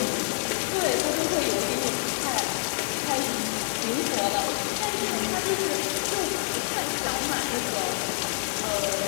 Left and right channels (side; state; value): right; silent; digital silence